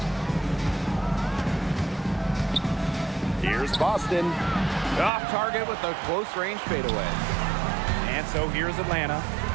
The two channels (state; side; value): drops out; left; at 5.1 s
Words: Here's Boston. Off target with a close range fadeaway. And so here's Atlanta.